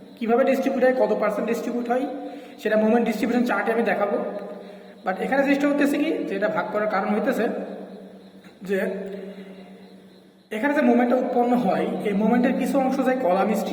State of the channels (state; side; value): identical; both; correlation 1.00